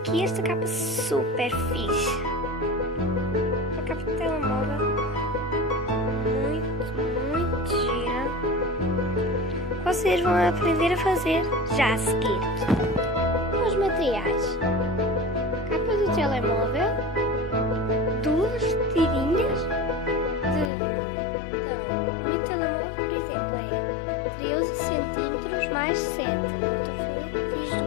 esta capa super fixe. A capa de telemóvel. Muito gira. Vocês vão aprender a fazer já a seguir. Os materiais. Capa do telemóvel. Duas tirinhas. O meu telemóvel, por exemplo, é 13 centímetros mais 7. Eu fiz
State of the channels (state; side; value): drops out; right; at 20.7 s